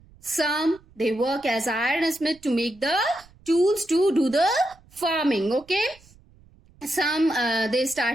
some they work as ironsmith to make the tools to do the farming. Okay, some they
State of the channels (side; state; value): right; noise; rumble, 27 dB below the sound